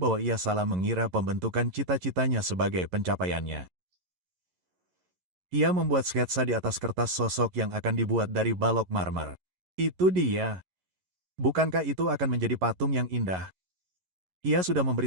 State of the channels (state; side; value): late; left; 11 ms